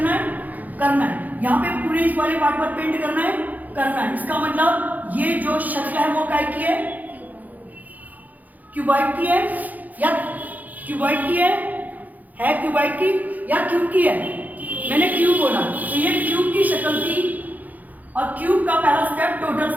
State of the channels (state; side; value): late; left; 0.081 ms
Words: करना है, यहाँ पे पूरे इस वाले पार्ट पर पेंट करना है। इसका मतलब ये जो शक्ल है वो काय की है? क्यूबॉइड की है या क्यूबॉइड की है क्यूबॉइड की या क्यूब की है? मैंने क्यूब बोला, तो ये क्यूब की शक्ल थी और क्यूब का पहला स्टेप टोटल